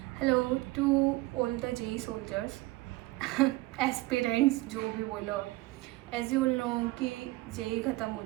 Hello to all the JEE soldiers aspirants जो भी बोलो एज यू नो कि जेई ख़त्म हो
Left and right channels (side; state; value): left; quieter; 19.8 dB